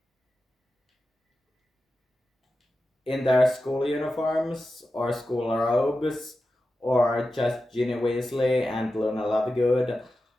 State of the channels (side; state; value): both; normal; correlation 0.92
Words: school uniforms or school robes, or just Ginny Weasley and Luna Lovegood.